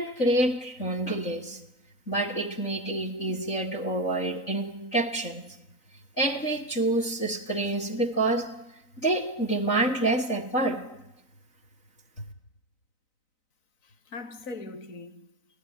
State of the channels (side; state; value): right; late; 3.9 ms